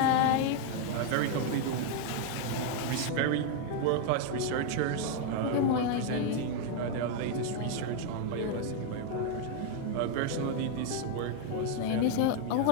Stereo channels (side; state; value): both; different; correlation 0.00